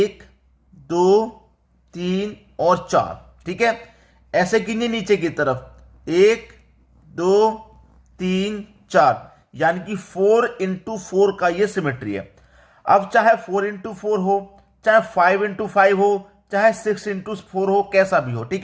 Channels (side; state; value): both; identical; correlation 1.00